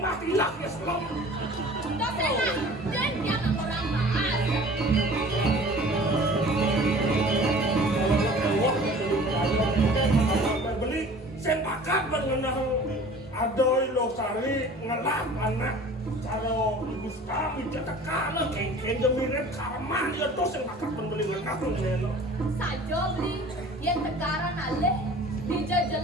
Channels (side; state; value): both; normal; correlation 0.45